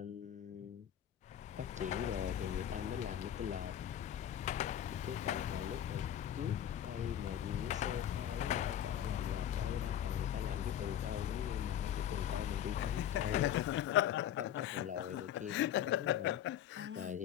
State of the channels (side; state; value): right; quieter; 10.4 dB